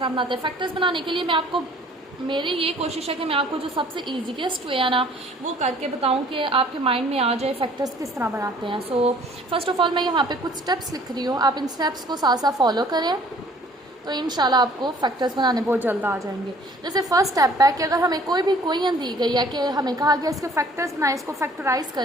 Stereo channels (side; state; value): both; normal; correlation 0.55